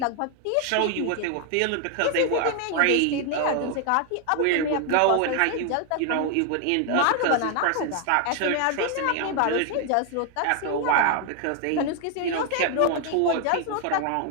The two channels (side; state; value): both; different; correlation 0.00